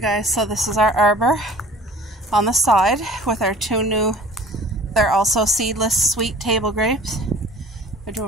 so this is our arbor on the side with our two new, they're also seedless sweet table grapes. They're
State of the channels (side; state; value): both; normal; correlation 0.46